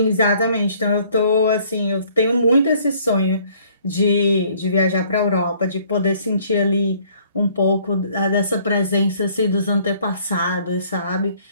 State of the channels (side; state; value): both; inverted; correlation -0.60